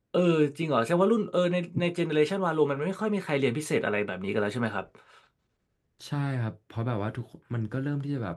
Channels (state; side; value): identical; both; correlation 1.00